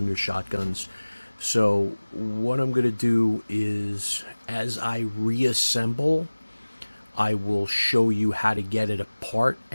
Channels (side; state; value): both; inverted; correlation -1.00